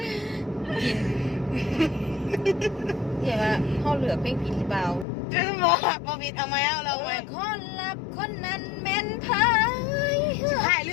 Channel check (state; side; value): drops out; right; at 5.1 s